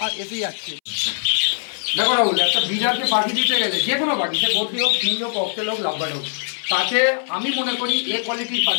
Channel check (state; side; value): silent; right; 65 dB below the other